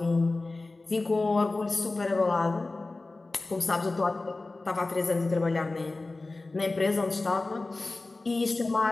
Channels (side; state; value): right; quieter; 3.3 dB